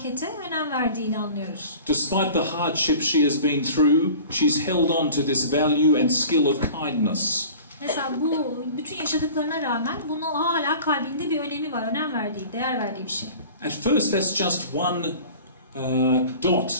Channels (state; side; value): inverted; both; correlation -0.42